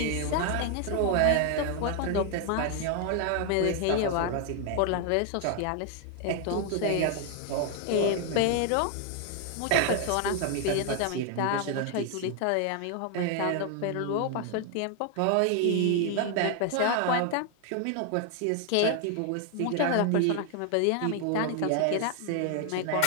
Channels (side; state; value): both; different; correlation 0.00